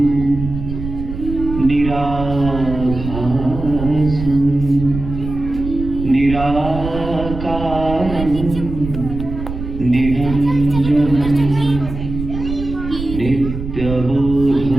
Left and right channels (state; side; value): noise; right; rumble, 7 dB below the sound